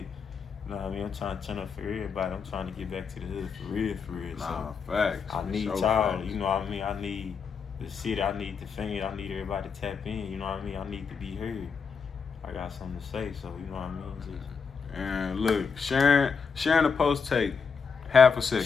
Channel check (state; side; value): quieter; right; 5.8 dB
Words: You know what I mean? I'm trying to turn up for everybody. I'm trying to get back to the hood for real. Nah, So facts. I need y'all. Facts. You know what I mean? I need the city. I need the fans. I need everybody to tap in. You know what I mean? I need to be heard. I got something to say. So you know what I mean? Just And look, sharing the post take half a